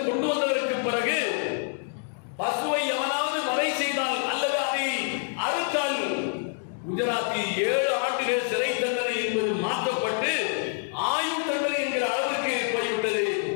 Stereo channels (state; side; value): silent; right; 60 dB below the other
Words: கொண்டு வந்ததற்கு பிறகு பசுவை எவனாவது வதை செய்தால் அல்லது அதை அறுத்தால் குஜராத்தில் 7 ஆண்டுகள் சிறை தண்டனை என்பது மாற்றப்பட்டு ஆயுள் தண்டனை என்கிற அளவிற்கு போய்விட்டது.